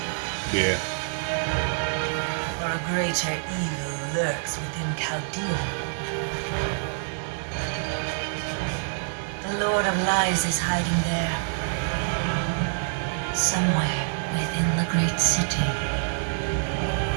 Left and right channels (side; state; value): left; silent; digital silence